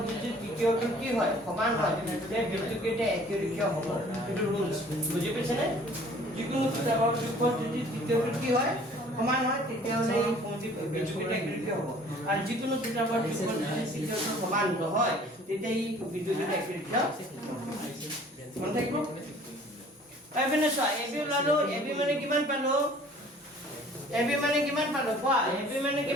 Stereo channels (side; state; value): both; normal; correlation 0.52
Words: যদি তৃতীয়টো কি হয় সমান হয় তে বিন্দুকেইটা একেৰেখীয় হ'ব এটো ৰুলছ বুজি পাইছে নে যিকোনো দুটা বাহুৰ যোগফল যদি তৃতীয়টো কি হয় সমান হয় তেতিয়াহ'লে এই বিন্দুকেইটা একেৰেখীয় হ'ব আৰু যিকোনো দুটা বাহুৰ যোগফল যদি তৃতীয়টো সমান নহয় তেতিয়া এই বিন্দুকেইটা একেৰেখীয় মন থাকিব এবিনে চোৱা এবি ওলালো এবি মানে কিমান পালো কোৱা এবি মানে